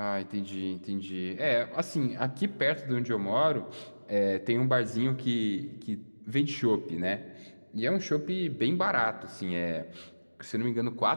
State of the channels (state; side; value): inverted; both; correlation -1.00